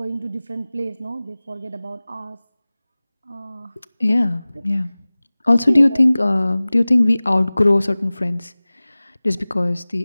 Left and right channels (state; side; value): inverted; both; correlation -0.99